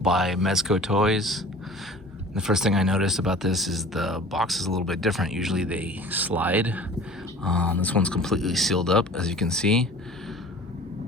by Mezco Toys. The first thing I noticed about this is the box is a little bit different. Usually they slide. This one's completely sealed up, as you can see.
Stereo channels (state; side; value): normal; both; correlation 0.43